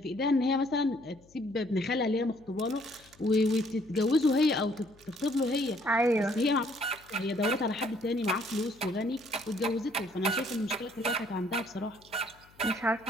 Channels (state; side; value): noise; left; hum, 28 dB below the sound